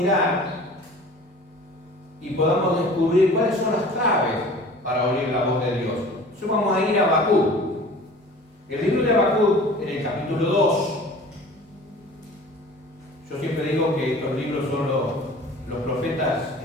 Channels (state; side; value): normal; both; correlation 0.44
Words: y podamos descubrir cuáles son las claves para oír la voz de Dios. Entonces, vamos a ir a Habacuc. El libro de Habacuc, en el capítulo 2, yo siempre digo que estos libros son los profetas